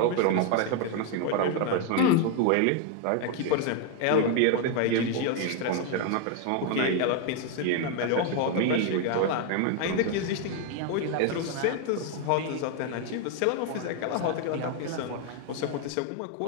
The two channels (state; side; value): different; both; correlation 0.01